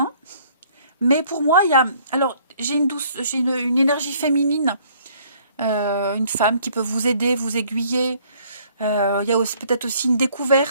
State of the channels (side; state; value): both; inverted; correlation -0.61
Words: Mais pour moi, il y a... Alors, j'ai une énergie féminine. Une femme qui peut vous aider, vous aiguiller. Il y a peut-être aussi une